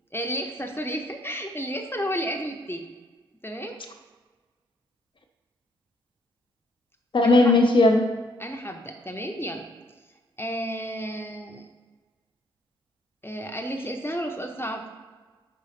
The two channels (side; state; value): both; normal; correlation 0.67